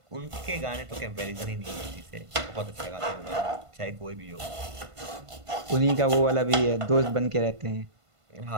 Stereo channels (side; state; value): left; late; 1.5 ms